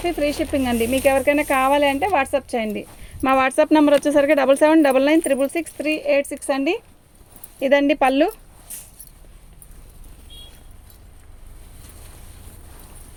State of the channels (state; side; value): identical; both; correlation 1.00